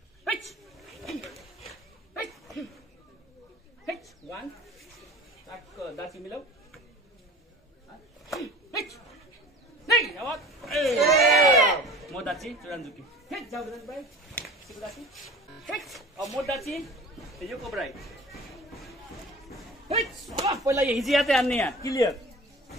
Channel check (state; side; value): normal; both; correlation 0.41